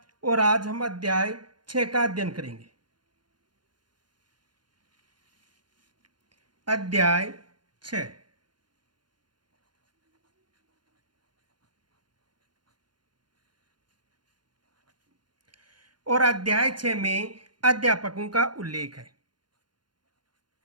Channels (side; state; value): left; late; 0.71 ms